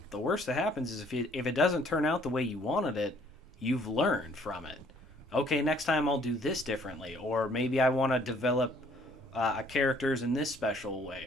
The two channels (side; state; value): both; normal; correlation 0.61